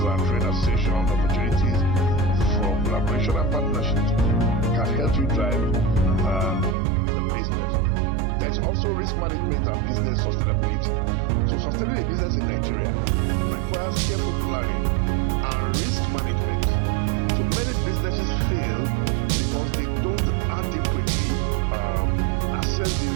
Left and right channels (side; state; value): left; drops out; at 6.8 s